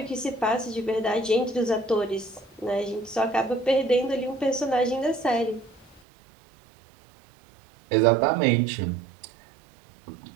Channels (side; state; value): left; drops out; at 6.0 s